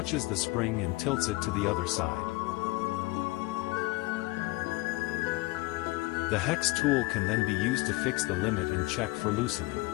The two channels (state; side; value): quieter; right; 21.9 dB